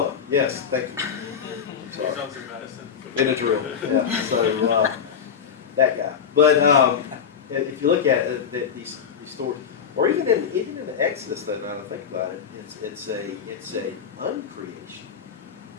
Yes, thank you. I'm sorry. Sounds like medicine. Benadryl. Yeah. So that guy. But if you look at it, these stories, or even in the Exodus, though, now that I think about it, it's a uncreation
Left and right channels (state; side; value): quieter; right; 7.3 dB